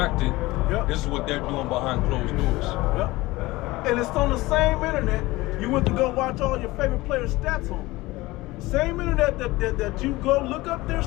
this is what they're doing behind closed doors. And it's on the same internet you went to go watch all your favorite players' stats on. Same internet that you go look up their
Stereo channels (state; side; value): quieter; right; 19.9 dB